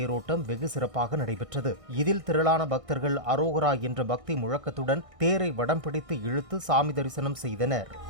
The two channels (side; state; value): left; late; 1.6 ms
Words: வெகு சிறப்பாக நடைபெற்றது. இதில் திரளான பக்தர்கள் அரோகரா என்ற பக்தி முழக்கத்துடன் தேரை வடம் பிடித்து இழுத்து சாமி தரிசனம் செய்தனர்.